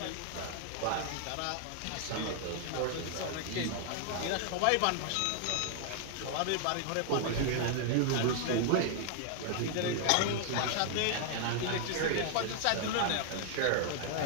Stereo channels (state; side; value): different; both; correlation 0.00